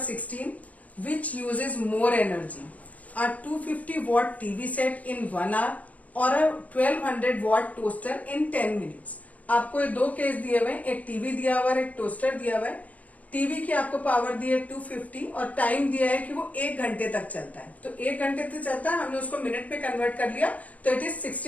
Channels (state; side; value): late; right; 0.071 ms